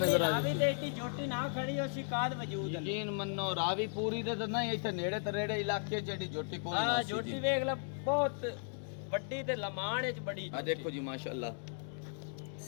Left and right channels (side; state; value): right; silent; digital silence